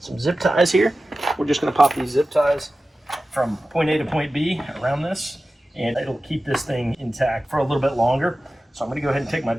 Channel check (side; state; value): both; normal; correlation 0.95